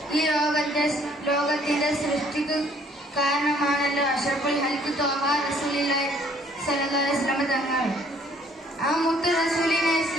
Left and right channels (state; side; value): normal; both; correlation 0.61